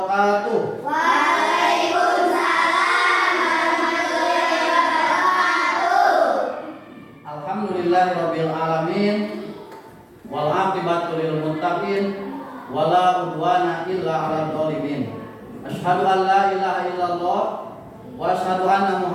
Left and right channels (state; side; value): identical; both; correlation 1.00